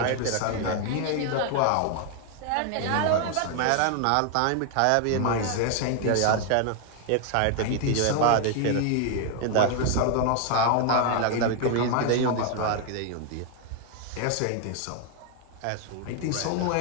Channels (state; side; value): different; both; correlation 0.00